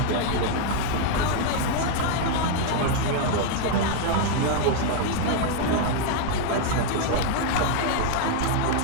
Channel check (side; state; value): both; different; correlation 0.00